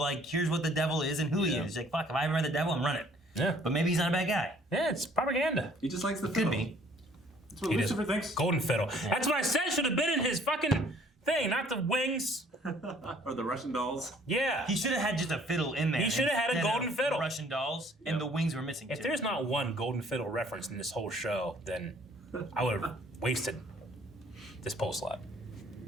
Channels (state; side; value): normal; both; correlation 0.58